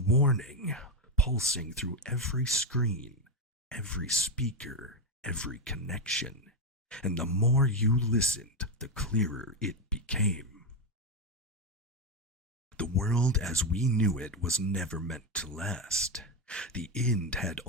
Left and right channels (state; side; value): normal; both; correlation 0.09